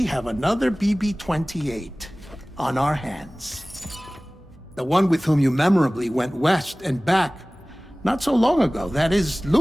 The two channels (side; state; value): both; normal; correlation 0.98